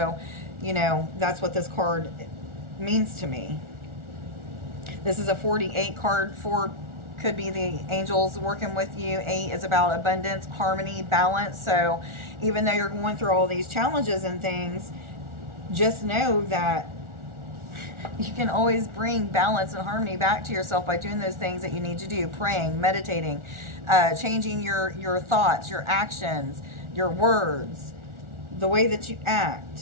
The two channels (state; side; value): late; left; 1.4 ms